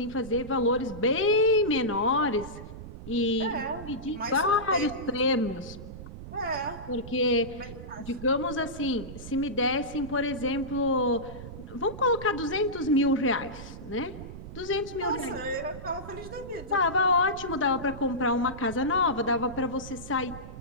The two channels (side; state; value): right; noise; rumble, 12 dB below the sound